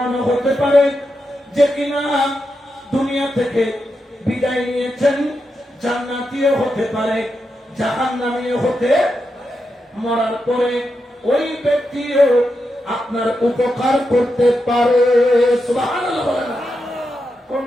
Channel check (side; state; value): both; normal; correlation 0.86